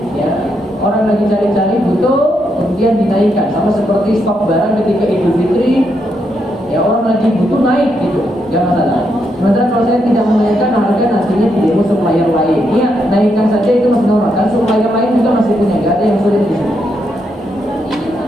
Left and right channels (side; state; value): both; normal; correlation 0.80